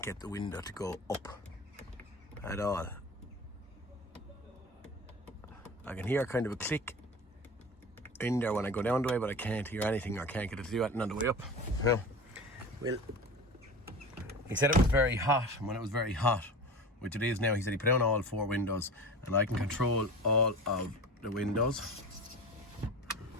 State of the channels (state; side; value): normal; both; correlation 0.33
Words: get the window to go up at all. I can hear kind of a click in there when I go down the way, but I can't hear anything or can't get it to do anything on the way up. Well, he said it was very hot, and when it was very hot, which it is now, he said he put down all 4 windows and I can control all of the windows.